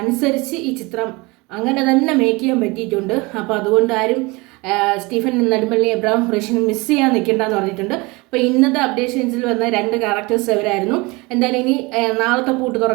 അനുസരിച്ച് ഈ ചിത്രം അങ്ങനെ തന്നെ മേക്ക് ചെയ്യാൻ പറ്റിയിട്ടുണ്ട്. അപ്പോൾ അതുകൊണ്ട് ആരും സ്റ്റീഫൻ നെടുമ്പള്ളി, എബ്രഹാം ഖുറേഷിനെ മിസ് ചെയ്യാൻ നിൽക്കേണ്ടെന്ന് പറഞ്ഞിട്ടുണ്ട്. അപ്പോൾ ഇന്നത്തെ അപ്ഡേഷൻസിൽ വന്ന 2 ക്യാരക്ടേഴ്സ് അവരായിരുന്നു. എന്തായാലും ഇനി നാളത്തെ പൂട്ട്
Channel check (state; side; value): quieter; left; 25.0 dB